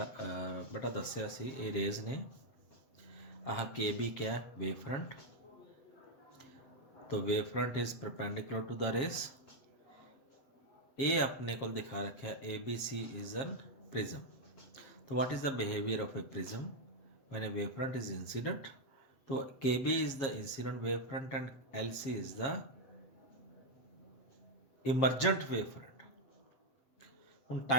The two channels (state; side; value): late; right; 7.4 ms